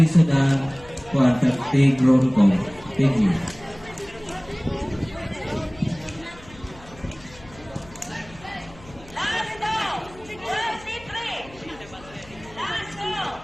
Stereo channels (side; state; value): left; noise; hum, 22 dB below the sound